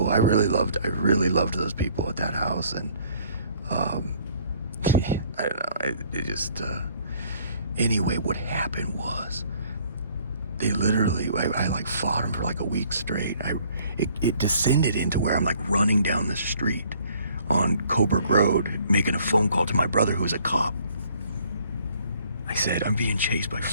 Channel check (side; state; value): both; inverted; correlation -0.60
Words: I really loved those people at that house. And I don't know, it just anyway, what happened was they literally, I like fought them for like a week straight. It descended into where I'm like running down the street on Coburg Road, making a phone call to my brother who was a cop. I said, I'm being chased by